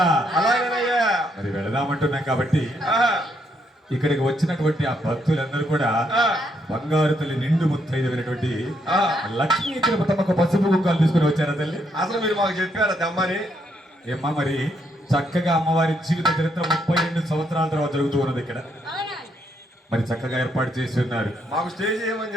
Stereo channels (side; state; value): both; normal; correlation 0.75